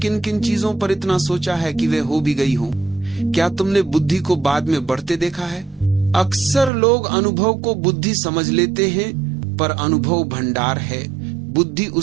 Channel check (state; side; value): drops out; left; at 6.7 s